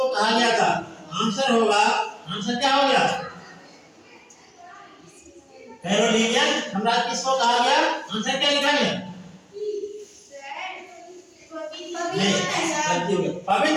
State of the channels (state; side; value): identical; both; correlation 1.00